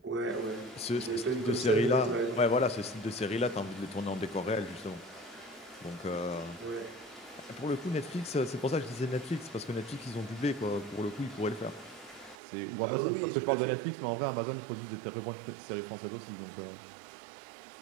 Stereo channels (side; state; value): left; drops out; at 12.4 s